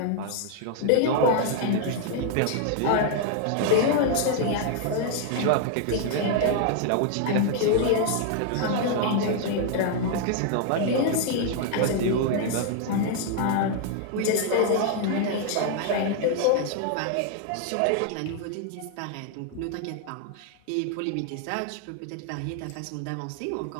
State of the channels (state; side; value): different; both; correlation 0.00